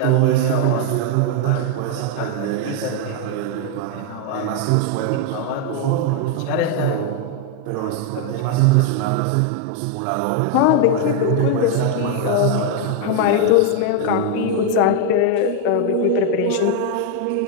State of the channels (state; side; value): different; both; correlation 0.00